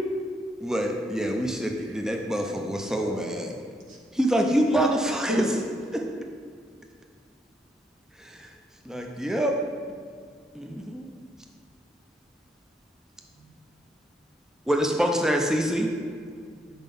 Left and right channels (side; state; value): both; normal; correlation 0.76